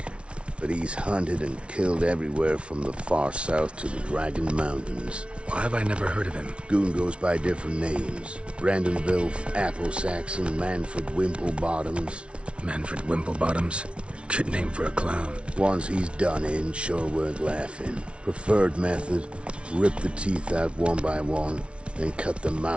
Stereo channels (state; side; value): late; left; 0.059 ms